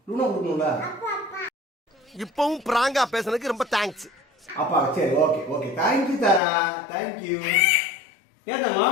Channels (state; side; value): drops out; right; at 6.4 s